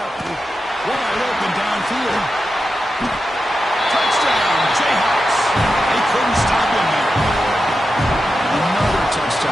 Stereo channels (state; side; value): normal; both; correlation 0.90